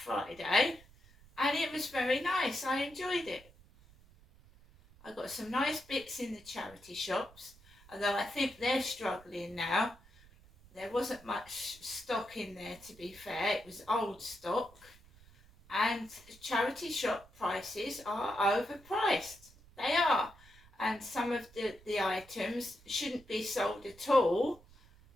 and it was very nice. I enjoyed it. I got some nice bits in the charity shops, although I think they're struggling now. There wasn't much stock in there, to be fair. It was old stock. And charity shop prices are overpriced. They are. And some of the items shouldn't be sold at all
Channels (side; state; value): right; noise; rumble, 24 dB below the sound